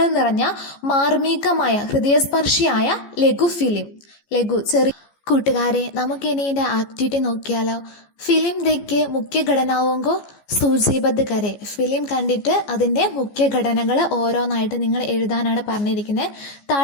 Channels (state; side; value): late; right; 14 ms